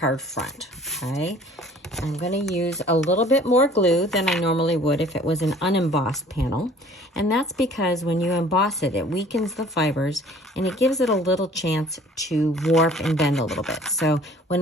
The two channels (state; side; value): normal; both; correlation 0.51